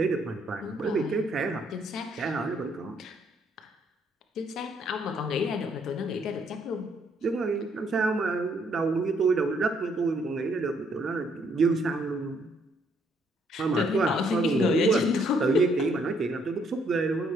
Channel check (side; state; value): both; normal; correlation 0.69